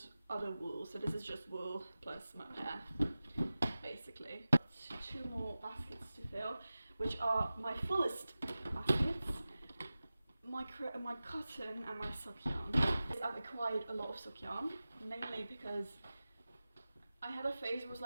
other wool. So this is just wool plus mohair, basically. 2 more baskets to fill, which are my fullest baskets. My cotton and my sock yarn. I've acquired a lot of sock yarn, mainly because I had a phase where I was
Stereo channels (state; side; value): inverted; both; correlation -0.96